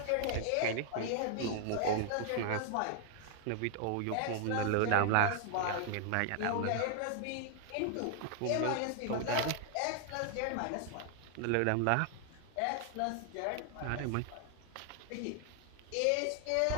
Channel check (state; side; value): different; both; correlation 0.00